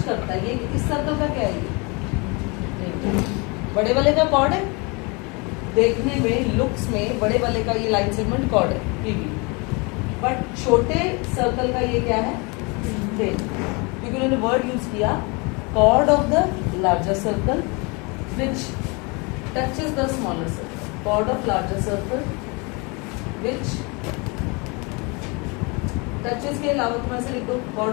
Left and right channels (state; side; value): quieter; right; 29.6 dB